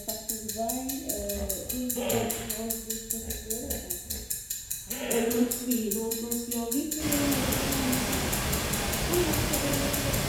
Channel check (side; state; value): both; identical; correlation 1.00